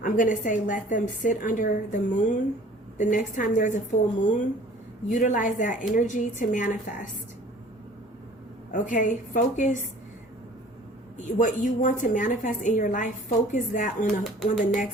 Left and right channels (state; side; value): normal; both; correlation 0.49